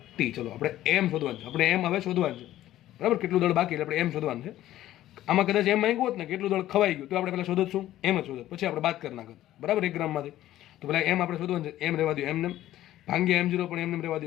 T. ચલો આપણે એમ શોધવાનું છે. આપણે એમ હવે શોધવાનું છે. બરાબર. કેટલું દળ બાકી એટલે આપણે એમ શોધવાનું છે. આમાં કદાચ એમ માંગ્યું હોત ને કેટલું દળ ખવાઈ ગયું તો આપણે પહેલાં શોધત શું? એમ જ શોધત, પછી આપણે બાદ કરી નાખત. બરાબર. 1 ગ્રામમાંથી. તો પહેલાં એમ આપણે શોધવાનું છે. એમ રહેવા દો એમને, ભાંગ્યા m0 પણ એમને રહેવા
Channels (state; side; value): quieter; right; 13.9 dB